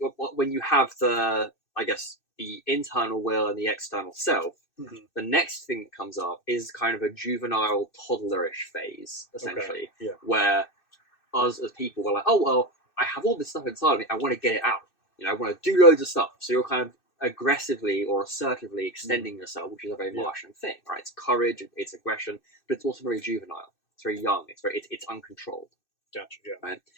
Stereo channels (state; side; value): late; right; 2.6 ms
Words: when you have the internal will and the external self, the next thing that comes up is kind of a juvenile, toddlerish phase, essentially, where us as people were like, oh, well, I have all this stuff inside of me, I want to get it out. I want to do loads of stuff. So you're kind of aggressively or assertively extending yourself, which is a very Martian thing, right? It's courage, it's aggression, but it's also very juvenile. It's very young. It's uncontrolled. Gotcha. Yeah. Right,